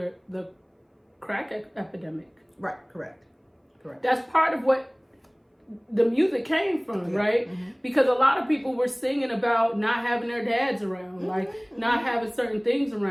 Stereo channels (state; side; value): identical; both; correlation 1.00